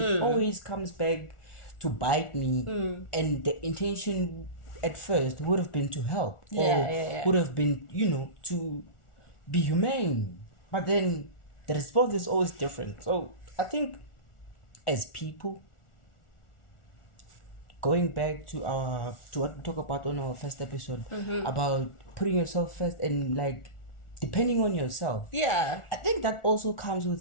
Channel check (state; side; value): late; right; 1.4 ms